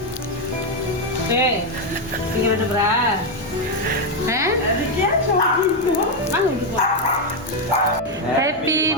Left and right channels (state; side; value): normal; both; correlation 0.04